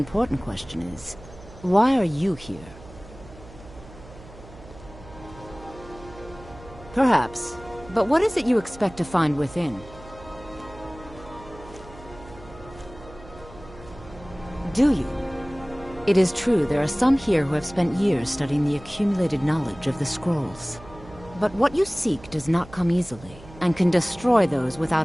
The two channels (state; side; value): noise; right; hum, 19 dB below the sound